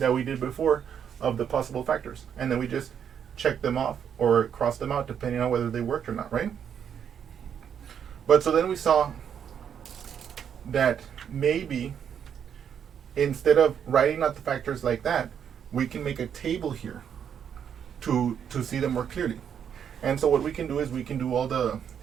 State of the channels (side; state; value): left; quieter; 8.3 dB